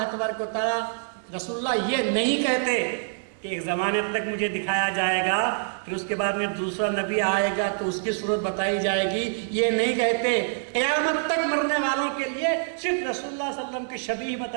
تبارک و تعالیٰ رسول اللہ یہ نہیں کہتے کہ ایک زمانے تک مجھے دکھایا جائے گا، پھر اس کے بعد میں دوسرا نبی آئے گا تو اس کی صورت بتائی جائے گی، یہ نہیں کہتے۔ قیامت تک مرنے والوں کے لیے صرف رسول اللہ صلی اللہ علیہ وسلم کی شبیہ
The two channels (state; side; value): silent; left; digital silence